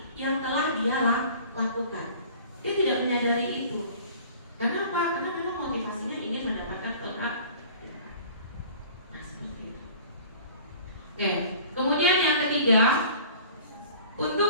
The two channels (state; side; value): inverted; both; correlation -0.47